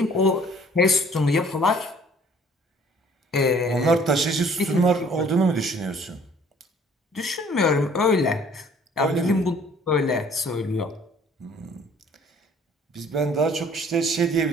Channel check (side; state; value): both; normal; correlation 0.56